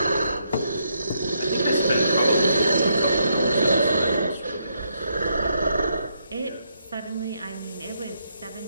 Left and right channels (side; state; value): both; inverted; correlation -0.77